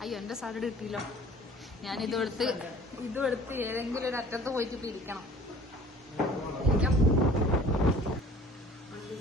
അയ്യോ എന്റെ സാലഡ് കിട്ടിയില്ലോ. ഞാൻ ഇതെടുത്ത് ഏതെങ്കിലും ഒരു അറ്റത്ത് പോയിട്ട് ഇപ്പൊ ഇരിക്കണം.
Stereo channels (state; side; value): normal; both; correlation 0.49